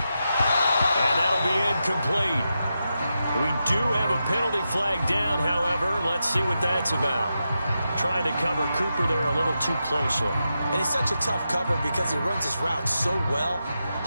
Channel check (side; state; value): both; inverted; correlation -0.88